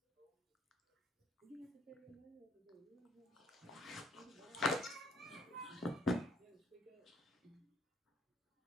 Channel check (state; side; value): normal; both; correlation 0.66